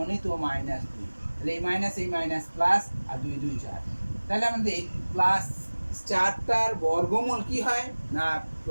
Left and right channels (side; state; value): both; inverted; correlation -1.00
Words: মাইনাস 2, তাহলে এই মাইনাস প্লাস, আর 2 2 4, তাহলে আমাদের প্লাস 4টার বর্গমূল কি হয় না,